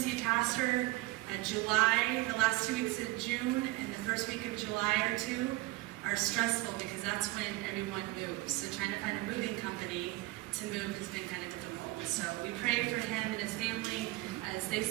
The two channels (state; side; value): quieter; left; 20.0 dB